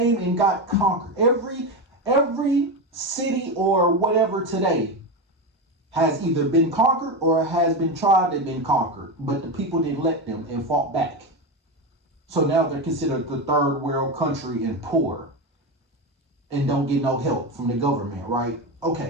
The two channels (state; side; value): normal; both; correlation 0.16